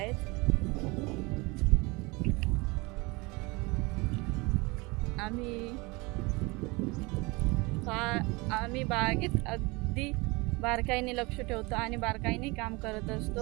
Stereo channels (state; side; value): quieter; left; 25.4 dB